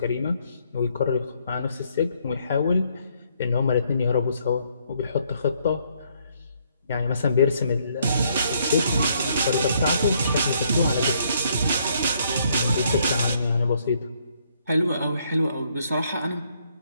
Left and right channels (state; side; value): inverted; both; correlation -0.69